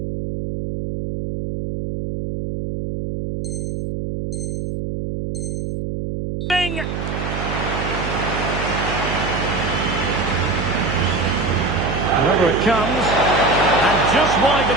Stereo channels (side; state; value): right; noise; hum, 4 dB below the sound